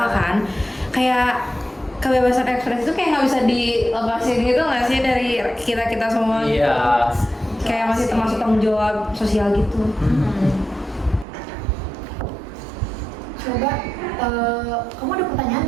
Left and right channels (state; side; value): drops out; left; at 11.2 s